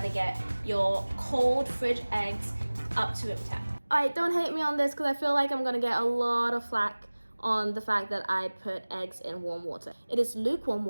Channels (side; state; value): both; inverted; correlation -1.00